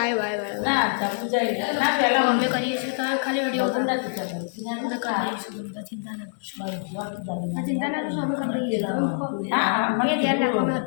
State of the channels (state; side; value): silent; right; digital silence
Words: અમે કરીએ છીએ ખાલી વિડીયો અમે કરી દઈશું. તમે ચિંતા ના કરશો. ચિંતા ના કરશો અમે કરી દઈએ છીએ. તમે ધ્યાન રાખો અમે